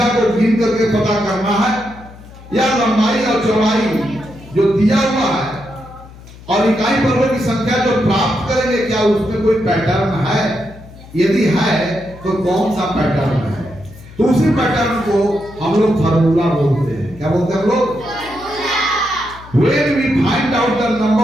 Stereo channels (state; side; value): noise; left; hum, 19 dB below the sound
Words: को गिन करके पता करना है, या लंबाई और चौड़ाई जो दिया हुआ है और इकाई वर्गों की संख्या जो प्राप्त करेंगे, क्या उसमें कोई पैटर्न है? यदि है तो कौन सा पैटर्न है? तो उसी पैटर्न को हम लोग फार्मूला बोलते हैं। क्या बोलते हैं हम लोग? When we find out the